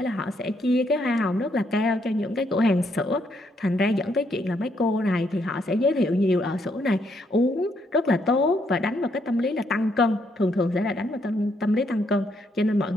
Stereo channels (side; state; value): both; normal; correlation 0.74